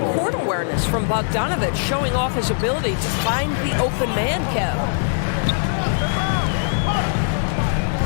court awareness from Bogdanovic, showing off his ability to find the open man, Kev?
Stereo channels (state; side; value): silent; right; 65 dB below the other